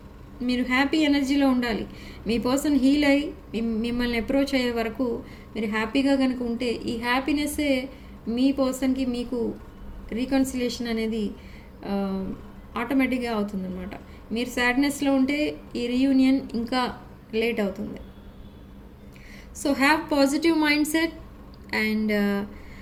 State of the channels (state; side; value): identical; both; correlation 1.00